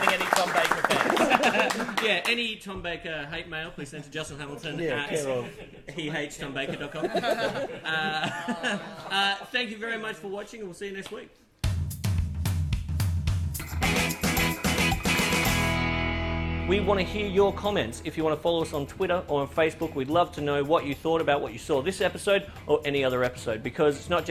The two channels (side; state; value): both; identical; correlation 1.00